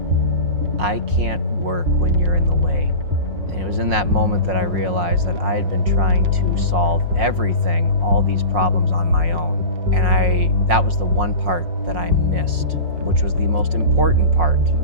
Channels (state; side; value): late; left; 5.5 ms